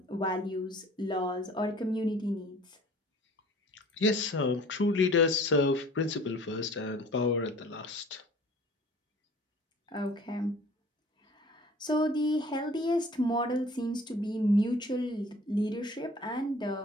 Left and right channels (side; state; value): both; normal; correlation 0.49